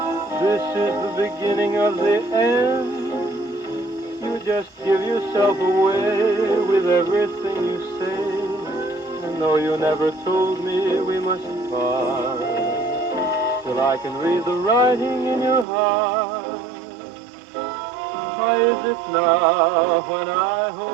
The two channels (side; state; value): left; drops out; at 15.7 s